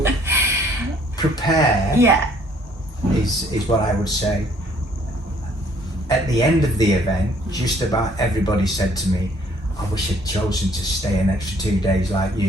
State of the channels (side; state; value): both; normal; correlation 0.60